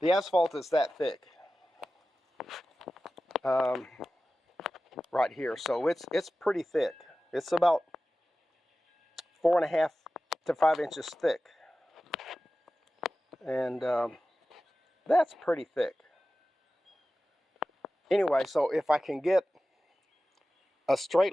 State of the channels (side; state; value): both; normal; correlation 0.95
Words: asphalt is that thick right here, so it's pretty thick. It's about 4.5 to 5 inches thick, and that's pretty thick. Anyway, so if I can get a straight